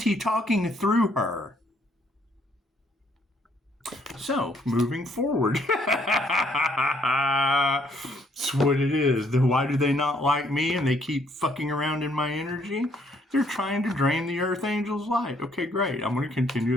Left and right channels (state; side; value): normal; both; correlation 0.67